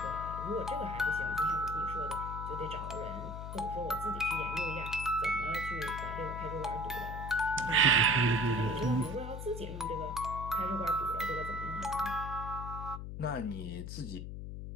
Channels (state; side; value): noise; left; hum, 7 dB below the sound